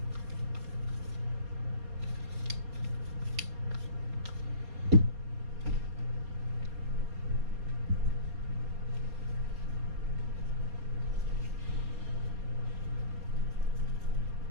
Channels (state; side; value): late; left; 4.2 ms